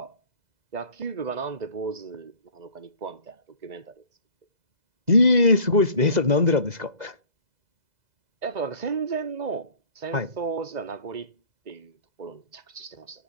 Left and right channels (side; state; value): left; late; 2.0 ms